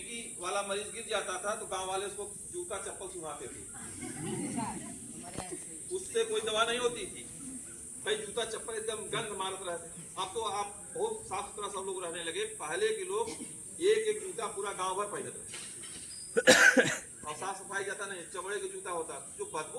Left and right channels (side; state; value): both; identical; correlation 1.00